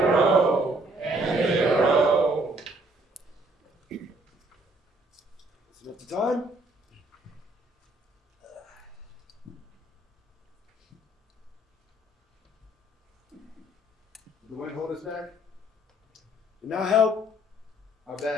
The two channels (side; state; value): both; normal; correlation 0.63